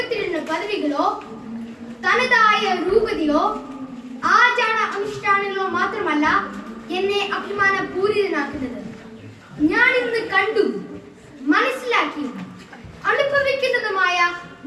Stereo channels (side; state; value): both; identical; correlation 1.00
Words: പദവികളോ തനതായ രൂപതയോ ആചാര അനുഷ്ഠാനങ്ങളോ മാത്രമല്ല എന്നെ അഭിമാനപൂരിതനാക്കുന്നത്. ഞാൻ ഇന്ന് കണ്ടു, മനസ്സിലാക്കിയും അനുഭവിക്കുന്നതുമായ